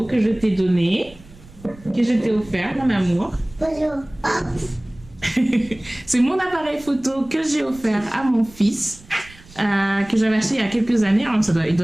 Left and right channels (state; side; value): noise; right; rumble, 22 dB below the sound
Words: que je t'ai donné, que je t'ai offert, mon amour. Bonjour. Ah. C'est mon appareil photo que j'ai offert à mon fils, que j'avais acheté il y a quelques années. Hein, il